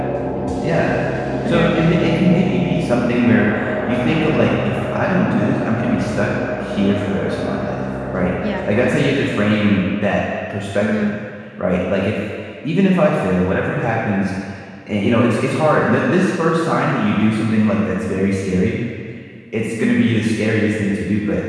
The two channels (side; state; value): both; identical; correlation 1.00